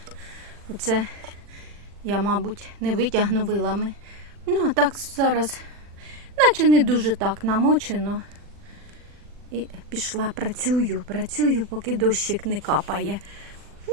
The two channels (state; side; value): late; left; 40 ms